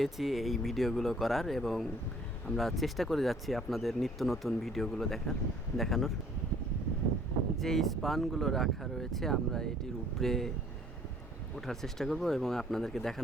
এই ভিডিওগুলো করার, এবং আমরা চেষ্টা করে যাচ্ছি আপনাদের নিত্য নতুন ভিডিওগুলো দেখানোর। যে স্পানগুলো রাখা রয়েছে, আমরা এটির উপরে ওঠার চেষ্টা করব এবং আপনাদেরকে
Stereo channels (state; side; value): normal; both; correlation 0.57